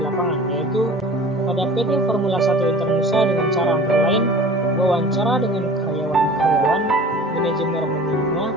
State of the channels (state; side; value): normal; both; correlation 0.43